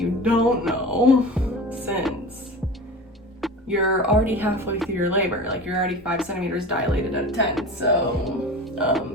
don't know, since you're already halfway through your labor, like you're already 5 centimeters dilated out of 10.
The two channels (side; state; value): both; normal; correlation 0.33